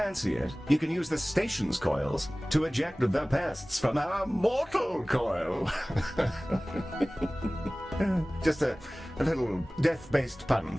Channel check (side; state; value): both; normal; correlation 0.98